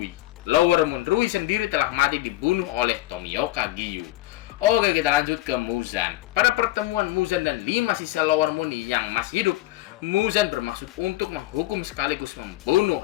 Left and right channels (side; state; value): right; quieter; 16.8 dB